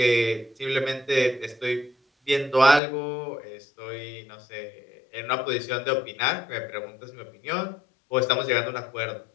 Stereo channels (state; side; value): drops out; right; at 2.8 s